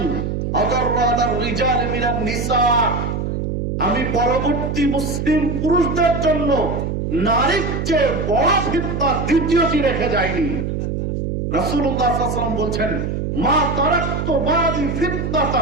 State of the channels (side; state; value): right; noise; hum, 2 dB below the sound